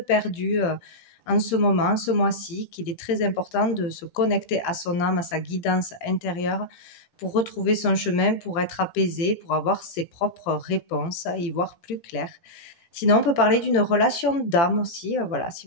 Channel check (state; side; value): late; right; 18 ms